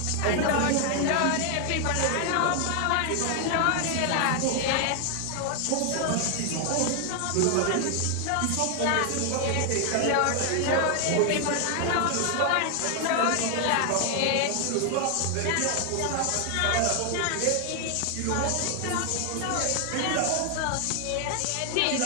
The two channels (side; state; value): both; different; correlation 0.00